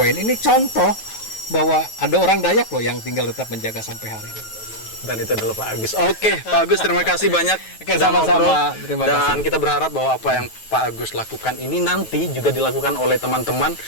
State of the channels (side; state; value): right; late; 9.2 ms